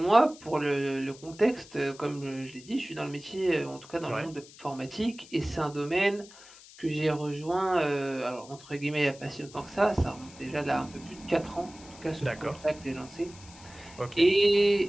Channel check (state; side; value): noise; left; hiss, 20 dB below the sound